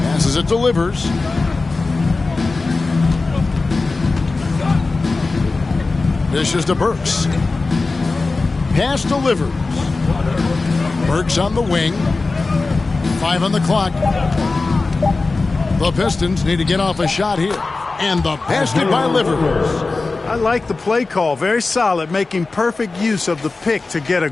Passes it, delivers. Dishes to Burks. Pass delivers. Burks on the wing. 5 on the clock. The Pistons need to get off a shot here. And the basket by Livers. I like the play call. Very solid, making perfect use of the pick to get a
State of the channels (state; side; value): quieter; right; 3.7 dB